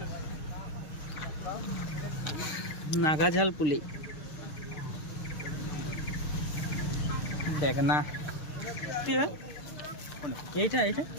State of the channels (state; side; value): late; right; 6.6 ms